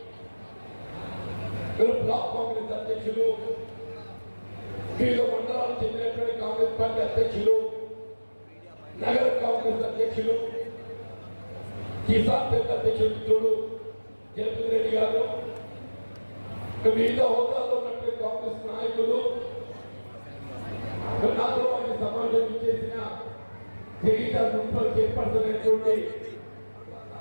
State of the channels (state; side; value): inverted; both; correlation -1.00